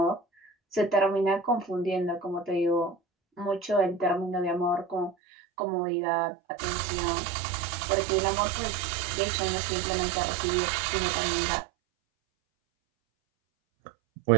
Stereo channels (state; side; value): drops out; left; at 5.2 s